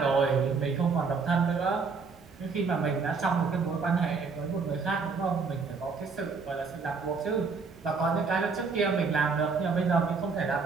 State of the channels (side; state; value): left; quieter; 4.8 dB